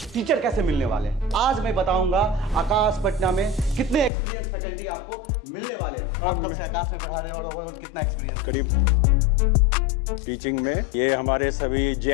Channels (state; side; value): drops out; right; at 4.1 s